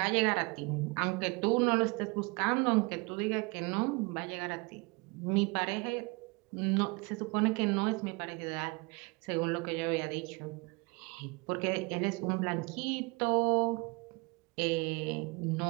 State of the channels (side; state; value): left; quieter; 27.9 dB